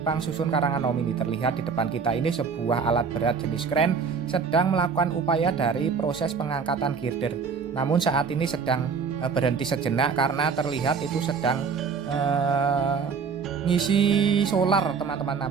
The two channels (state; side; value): quieter; left; 5.6 dB